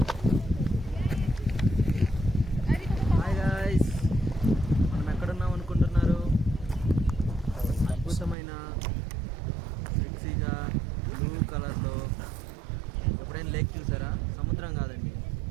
అద్భుతమైన మిక్సీగా బ్లూ కలర్లో ఎప్పుడైనా లేక్ చూసారా? సముద్రం కాదండి,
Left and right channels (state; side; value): drops out; left; at 8.3 s